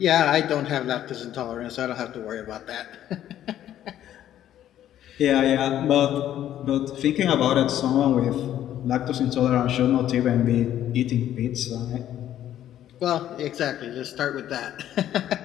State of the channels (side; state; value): right; quieter; 11.7 dB